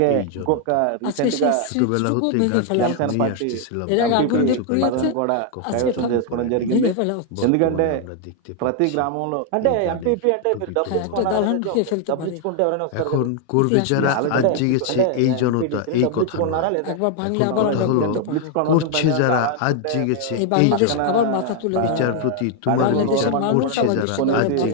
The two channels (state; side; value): different; both; correlation 0.00